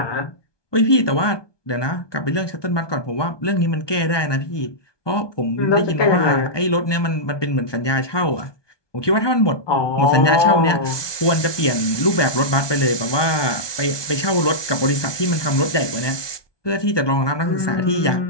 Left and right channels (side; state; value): right; late; 1.2 ms